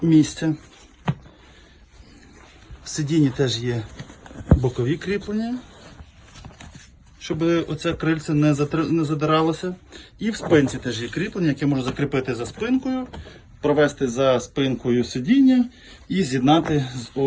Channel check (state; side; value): identical; both; correlation 1.00